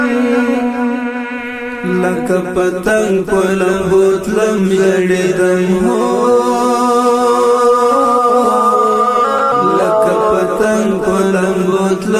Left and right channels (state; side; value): identical; both; correlation 1.00